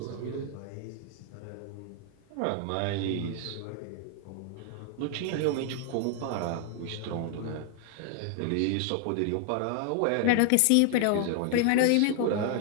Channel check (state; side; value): different; both; correlation 0.00